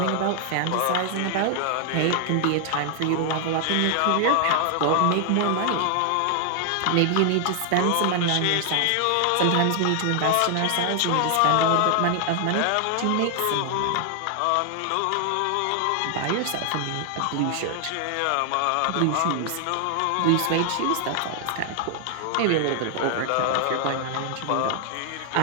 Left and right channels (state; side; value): different; both; correlation 0.00